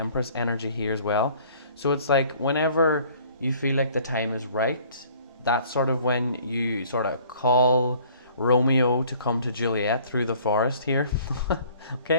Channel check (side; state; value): both; inverted; correlation -0.54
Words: energy here as well. So it's like whenever you feel like the time is right, that's sort of when you sort of call Romeo to come to Juliet through the forest here.